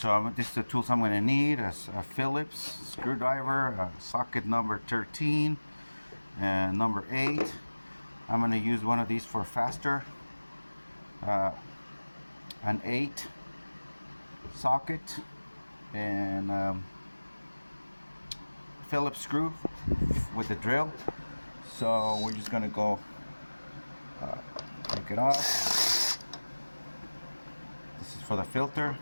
this is the tools I'm gonna need: a Phillips screwdriver, socket number 13 and number 8. I'm gonna use one of these for faster, an 8 socket, and Phillips screw with the drill. So we're just gonna go take it off. This is for the filter.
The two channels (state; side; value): inverted; both; correlation -1.00